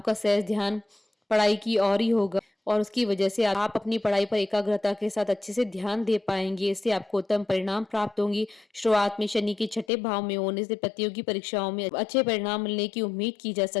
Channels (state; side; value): drops out; right; at 9.9 s